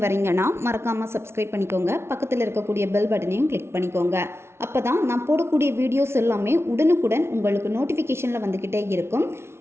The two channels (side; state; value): left; late; 0.12 ms